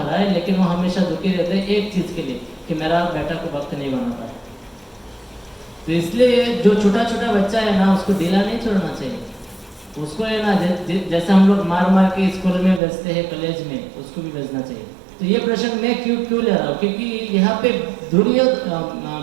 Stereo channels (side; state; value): left; drops out; at 12.8 s